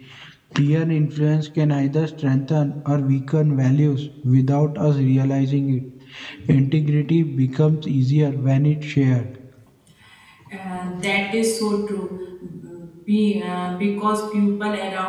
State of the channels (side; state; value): both; identical; correlation 1.00